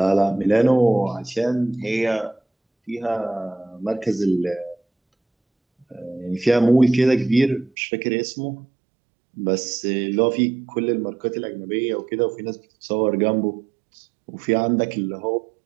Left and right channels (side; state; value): left; drops out; at 7.7 s